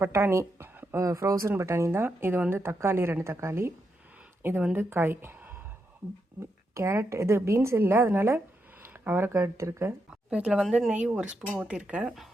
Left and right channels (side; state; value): both; normal; correlation 0.83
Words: பட்டாணி, ஃப்ரோசன் பட்டாணி தான். இது வந்து தக்காளி 2 தக்காளி, இது வந்து காய், கேரட், இது பீன்ஸ் இல்லை, அதனால் அவரைக்காய் எடுத்துருக்கேன். இப்போ இதில் வந்து நெய் 1 ஸ்பூன் ஊற்றிருக்கேன்.